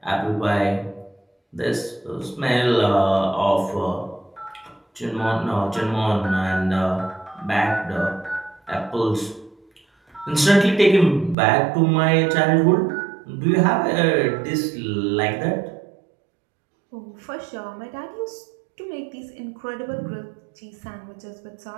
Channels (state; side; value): drops out; left; at 11.4 s